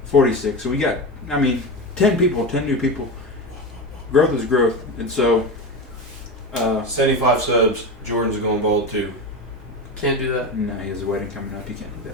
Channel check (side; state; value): both; normal; correlation 0.22